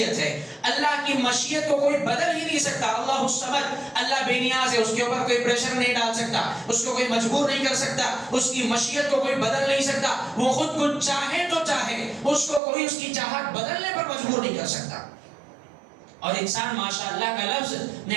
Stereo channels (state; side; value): drops out; left; at 12.6 s